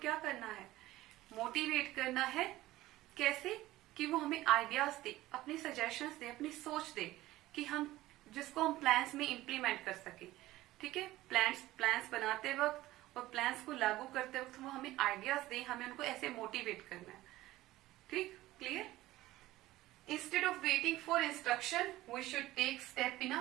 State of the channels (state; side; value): quieter; left; 16.7 dB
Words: क्या करना है? Motivate करना है। कैसे? कि वो हमें आइडियाज दे, अपनी सजेशंस दे, अपनी सोच दे कि हम जिसको हम प्लान्स में इम्प्लीमेंट कर सके। ठीक है? प्लान्स बनाते वक्त और प्लान्स को लागू करते वक्त वो हमें आइडियाज दे, हमें उनको ऐसे मोटिवेट करना है। ठीक? Clear? Instead of waiting for instruction, we should take step in